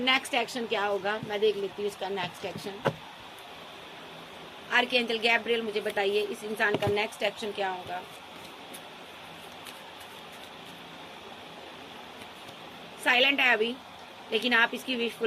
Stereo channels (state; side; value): identical; both; correlation 1.00